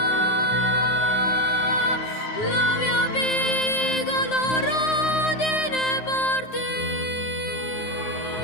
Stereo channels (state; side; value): late; right; 9.6 ms